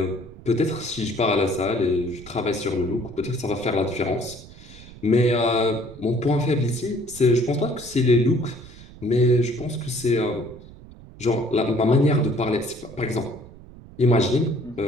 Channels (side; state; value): right; noise; rumble, 19 dB below the sound